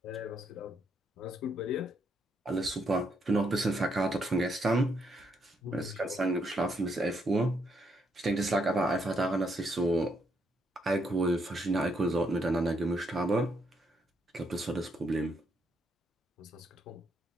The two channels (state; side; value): normal; both; correlation 0.76